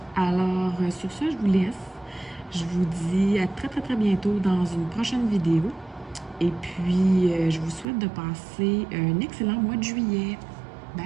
Alors, sur ça, je vous laisse. Je vous dis à très, très, très bientôt dans une prochaine vidéo. Et puis, je vous souhaite de passer un excellent mois de juillet.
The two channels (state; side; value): drops out; left; at 7.9 s